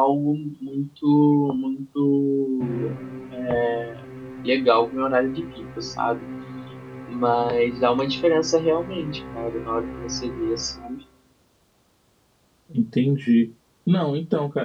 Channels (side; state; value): both; identical; correlation 1.00